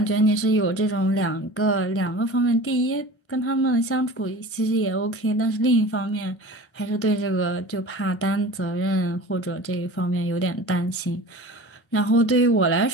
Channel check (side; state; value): right; late; 1.3 ms